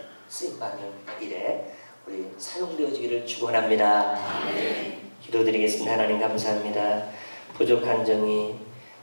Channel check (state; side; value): inverted; both; correlation -1.00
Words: 쓰임받는 일에 우리 사용되어지기를 축원합니다. 기도드리겠습니다. 하나님 감사합니다. 부족한 정이